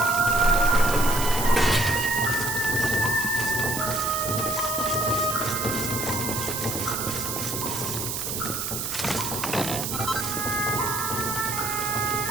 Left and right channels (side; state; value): right; noise; hiss, 3 dB below the sound